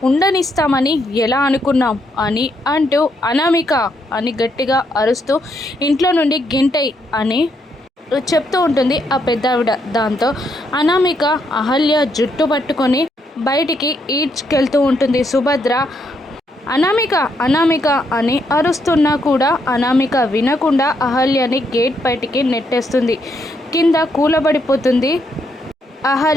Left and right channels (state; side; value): normal; both; correlation 0.76